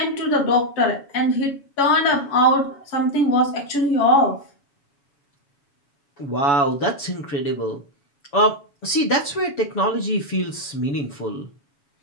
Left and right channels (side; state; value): right; late; 7.1 ms